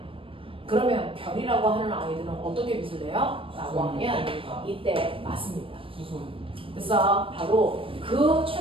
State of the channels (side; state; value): left; late; 0.26 ms